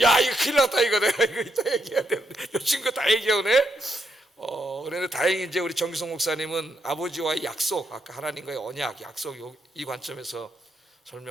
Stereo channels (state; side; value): normal; both; correlation 0.79